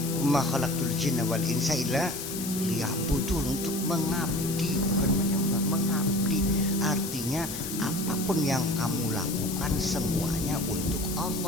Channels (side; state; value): left; noise; hiss, 7 dB below the sound